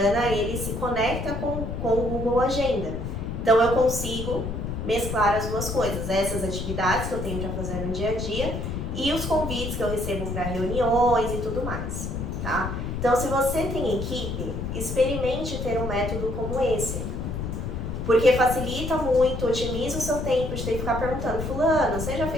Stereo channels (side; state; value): left; noise; rumble, 4 dB below the sound